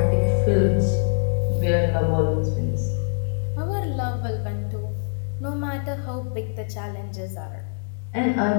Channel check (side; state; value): right; silent; digital silence